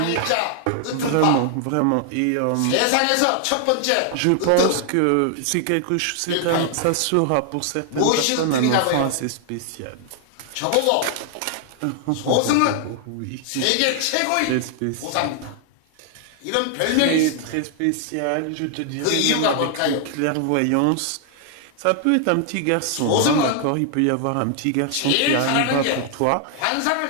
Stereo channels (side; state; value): both; different; correlation 0.00